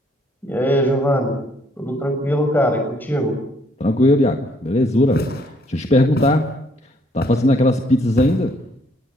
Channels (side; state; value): both; normal; correlation 0.67